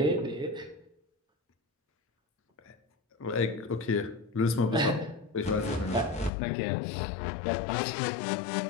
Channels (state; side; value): drops out; right; at 6.3 s